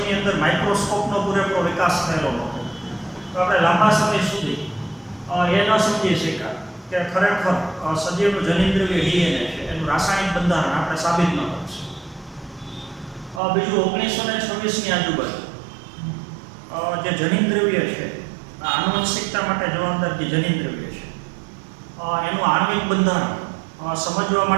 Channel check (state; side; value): drops out; left; at 13.4 s